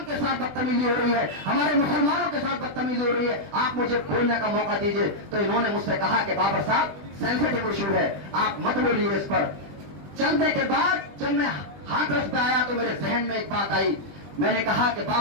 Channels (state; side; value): late; left; 20 ms